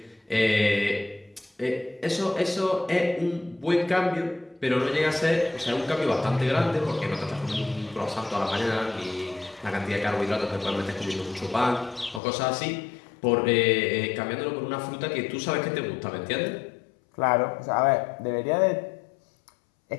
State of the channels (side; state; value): right; drops out; at 12.2 s